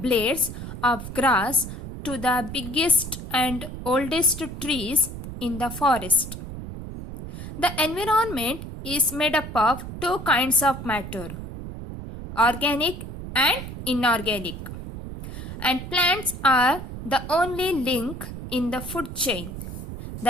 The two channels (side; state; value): right; noise; rumble, 9 dB below the sound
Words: of grass to the biggest and oldest trees in the forest. The environment is made up of two kinds of matter, organic and inorganic. And plants are the only link in the food chain